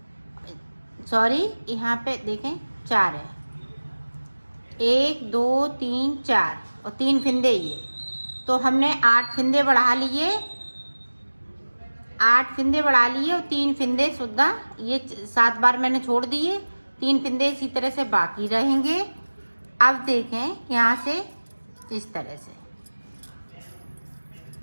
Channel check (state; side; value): inverted; both; correlation -1.00